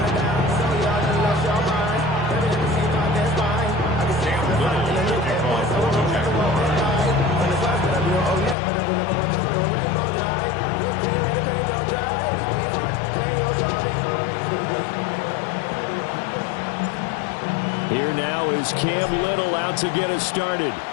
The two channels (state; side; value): drops out; right; at 8.6 s